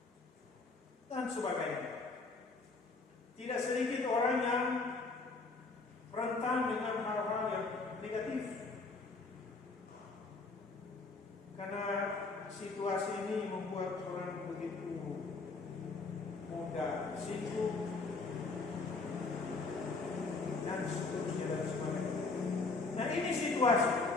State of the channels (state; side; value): quieter; right; 3.8 dB